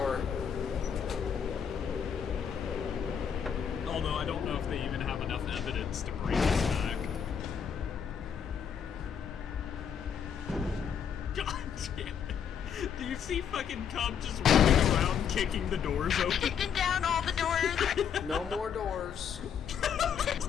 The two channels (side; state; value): right; quieter; 7.8 dB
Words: Although I don't know if they even have enough evidence to bring us back. God damn it. Do you see fucking Cub just running around kicking the doors open? Kicking down all the doors. No more doors.